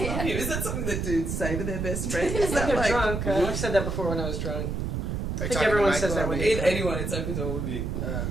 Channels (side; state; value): right; noise; rumble, 2 dB below the sound